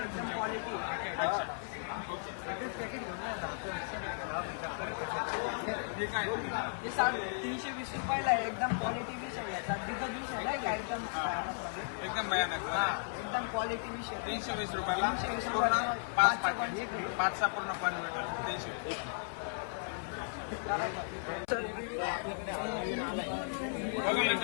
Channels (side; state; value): right; silent; 54 dB below the other